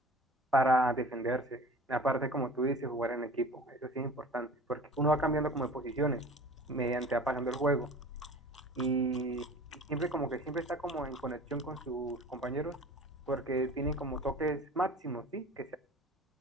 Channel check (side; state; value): both; normal; correlation 0.41